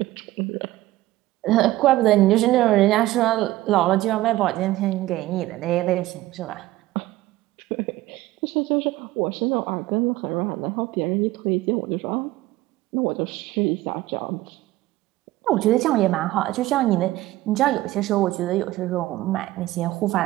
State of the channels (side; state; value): left; quieter; 16.8 dB